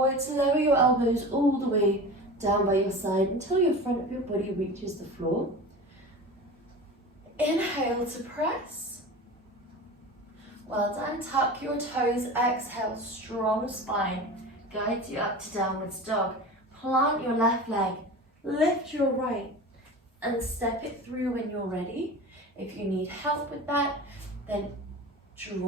lower your elbows all the way down by your side until your front of your body reaches the floor. Inhale to press. Well done. Tuck your toes. Exhale, strong spine. Guides you up to downwards dog. Plant your left leg. Lift your right and step it through when you're ready. If you need help with that, then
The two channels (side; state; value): both; normal; correlation 0.33